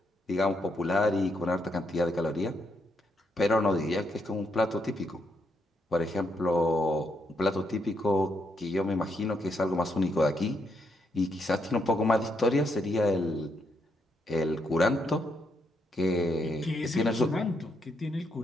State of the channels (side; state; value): both; normal; correlation 0.78